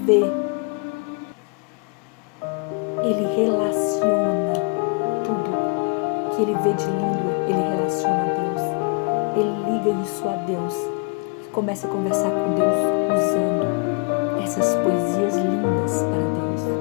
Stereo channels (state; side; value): quieter; right; 34.7 dB